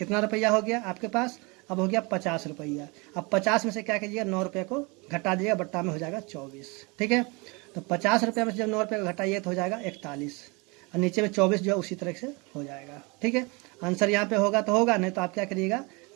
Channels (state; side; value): quieter; left; 28.1 dB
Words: रुपया हो गया आपके पास, अब हो गया 50 रुपया। अब 50 में से क्या कीजिएगा, 9 रुपये को घटा दीजिएगा, बट्टा में हो जाएगा 24। ठीक है, तो 50 रुपये में से जब 9 रुपये को घटाइए तो हो जाएगा 41, और नीचे में 24 जो है उसी तरह से हो जाएगा। ठीक है, आंसर यहाँ पे होगा तो होगा, नहीं तो आप क्या करिएगा,